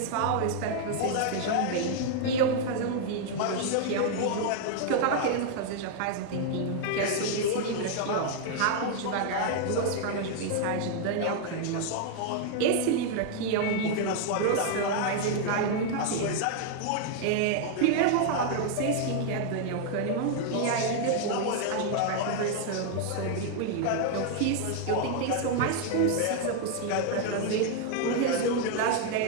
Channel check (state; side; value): different; both; correlation 0.00